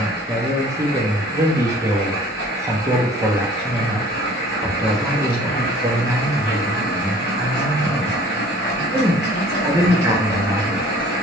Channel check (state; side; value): normal; both; correlation 0.50